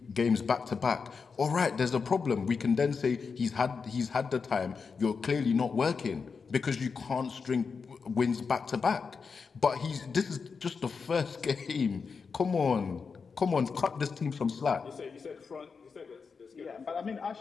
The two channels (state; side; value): quieter; right; 5.3 dB